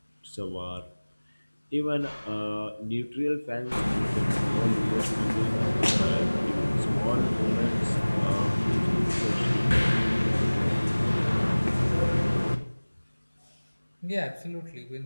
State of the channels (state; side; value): inverted; both; correlation -1.00